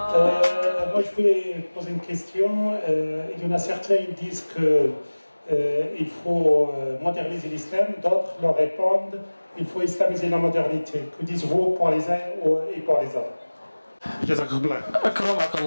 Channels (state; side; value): inverted; both; correlation -1.00